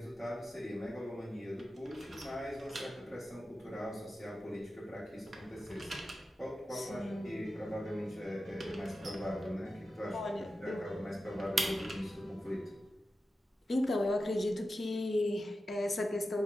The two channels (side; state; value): both; normal; correlation 0.92